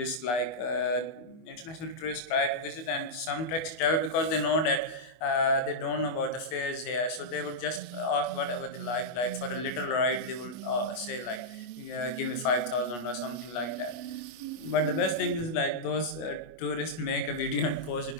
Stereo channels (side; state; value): right; late; 25 ms